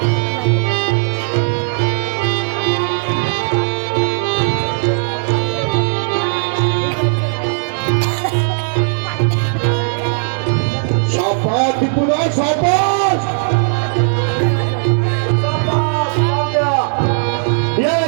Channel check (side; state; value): left; silent; digital silence